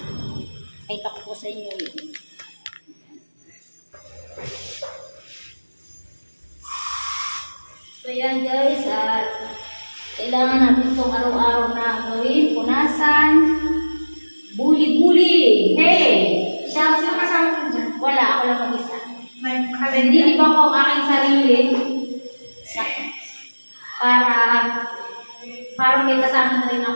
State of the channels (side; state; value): both; inverted; correlation -1.00